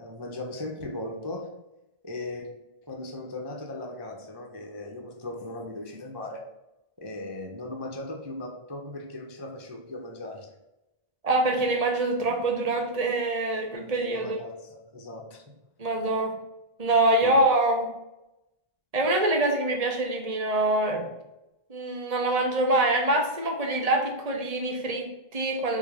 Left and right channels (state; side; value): late; left; 1.7 ms